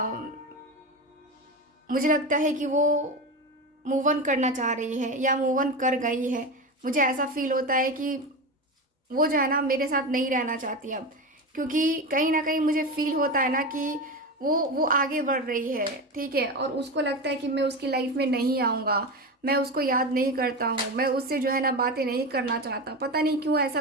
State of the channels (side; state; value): both; normal; correlation 0.21